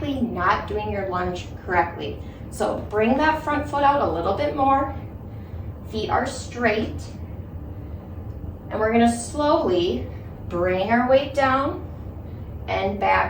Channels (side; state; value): both; identical; correlation 1.00